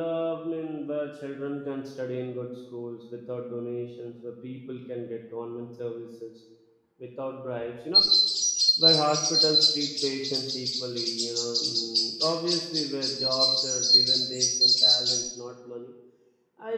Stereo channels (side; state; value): both; identical; correlation 1.00